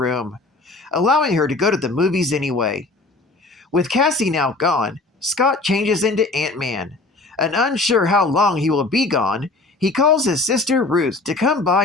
allowing her to go to the movies anyway. With Cassie now gone, Scott changes into Ant-Man, and unsure how long he will be gone, he calls his sister Ruth to come by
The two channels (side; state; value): right; quieter; 3.3 dB